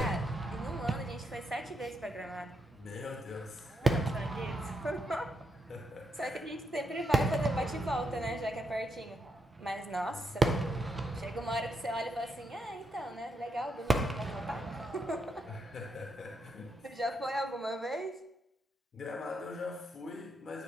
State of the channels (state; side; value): normal; both; correlation 0.80